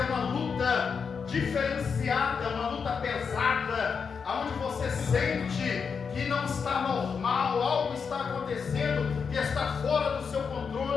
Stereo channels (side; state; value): right; quieter; 5.9 dB